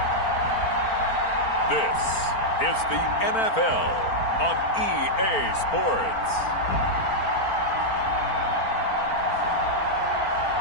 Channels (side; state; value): right; late; 4.4 ms